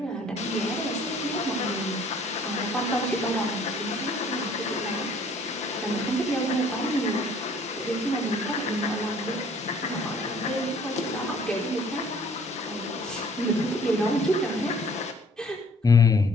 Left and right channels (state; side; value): normal; both; correlation 0.56